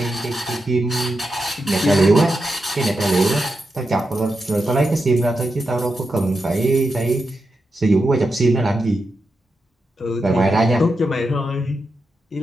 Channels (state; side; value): normal; both; correlation 0.87